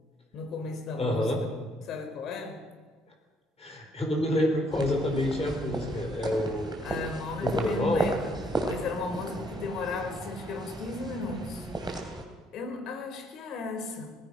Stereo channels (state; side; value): normal; both; correlation 0.68